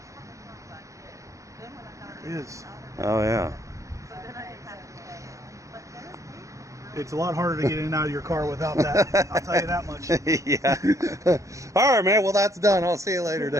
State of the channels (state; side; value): late; left; 0.15 ms